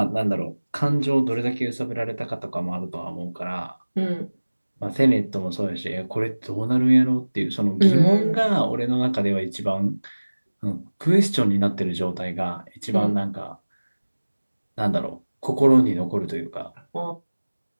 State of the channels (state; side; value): inverted; both; correlation -1.00